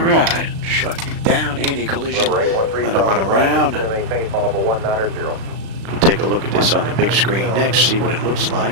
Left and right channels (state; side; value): late; left; 36 ms